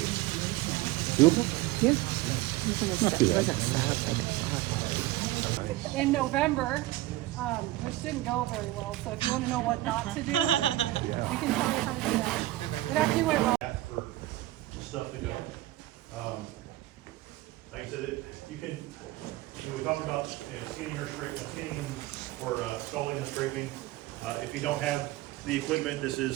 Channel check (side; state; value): left; quieter; 17.0 dB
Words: Doable? Yeah. Not too It bad. wasn't sad like I thought. In November, which didn't go very well, so if you want to know what not to do, we can tell you how to do that. It actually went well. For stuff to go. Like I said, you can, we talked about scanning or scraping, or stalling and scraping. If you don't have the equipment, this